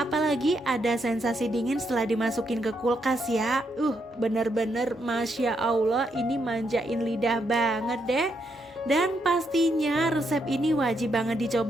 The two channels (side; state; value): both; normal; correlation 0.78